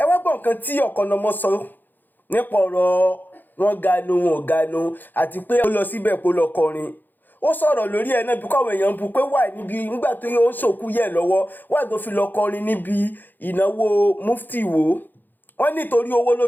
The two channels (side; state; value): right; late; 0.088 ms